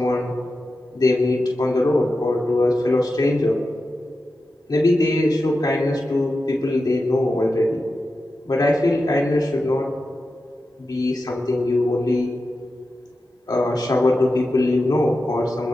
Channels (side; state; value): both; normal; correlation 0.91